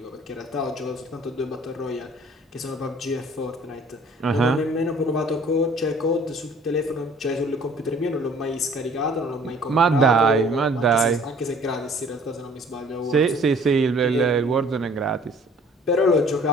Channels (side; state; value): both; normal; correlation 0.54